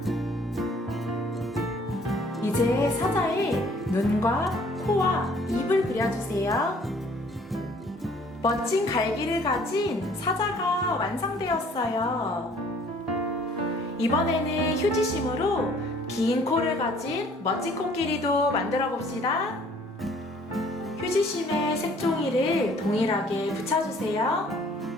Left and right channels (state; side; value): normal; both; correlation 0.57